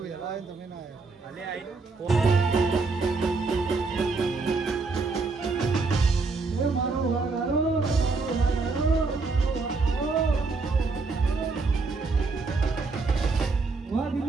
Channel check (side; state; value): left; quieter; 4.0 dB